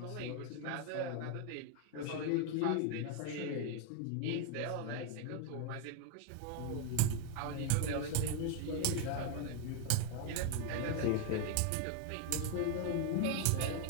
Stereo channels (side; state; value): both; different; correlation 0.01